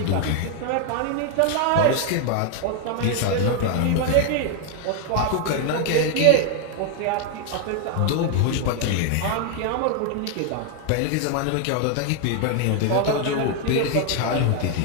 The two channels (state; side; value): different; both; correlation 0.01